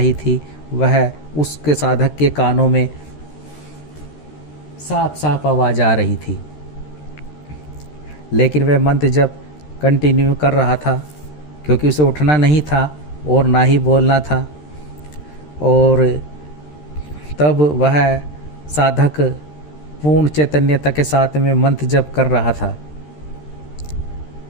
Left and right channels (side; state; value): right; late; 13 ms